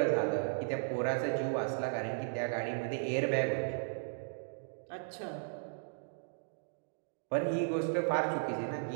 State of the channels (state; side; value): silent; left; digital silence